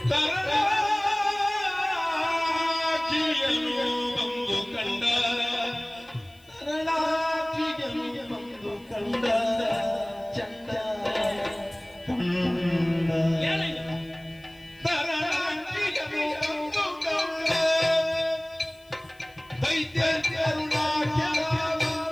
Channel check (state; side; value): noise; left; hiss, 29 dB below the sound